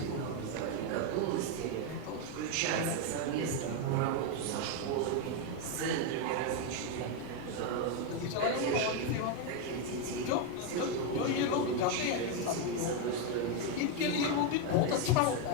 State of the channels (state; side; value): different; both; correlation 0.02